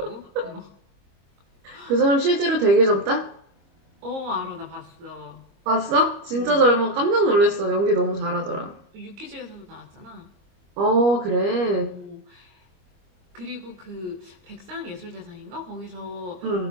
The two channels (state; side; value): late; left; 25 ms